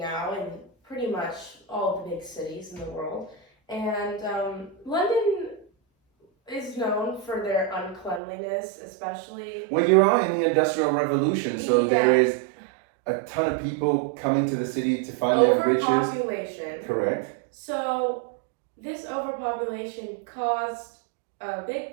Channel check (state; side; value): drops out; left; at 8.2 s